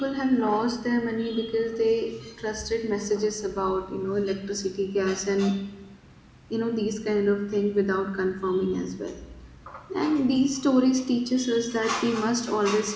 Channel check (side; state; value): both; identical; correlation 1.00